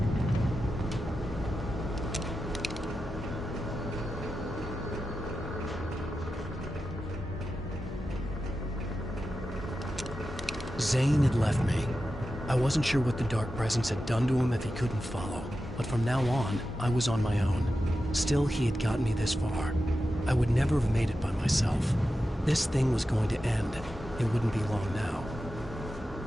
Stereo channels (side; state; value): both; normal; correlation 0.91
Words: Zane had left me. I wasn't sure what the Dark Presence had done to him if he couldn't follow, but from now on, I was on my own. Still, he had gotten me this far. I would never have made it by myself. This thing was going to end. It wouldn't be long now.